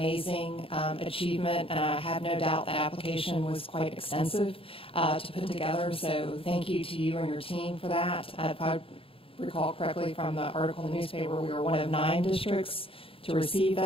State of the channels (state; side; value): late; right; 0.27 ms